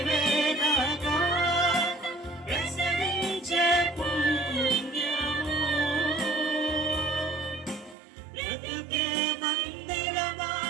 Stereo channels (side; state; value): left; drops out; at 8.0 s